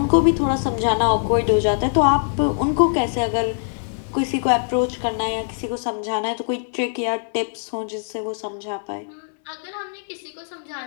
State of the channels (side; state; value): right; silent; 64 dB below the other